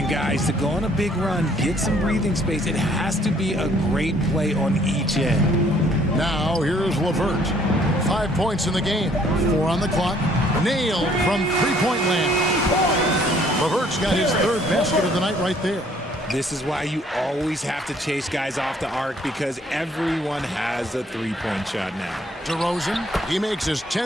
guys, to go on a big run, get some breathing space, it has to be a great play on each end. Now, here's LeVert. 5 points in the game. 4 on the clock. Nailed from three-point land. LeVert's got his 3rd basket of the night right there. This is why you always have to chase guys off the arc, because everyone has a three-point shot now. DeRozan, he makes his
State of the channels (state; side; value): normal; both; correlation 0.62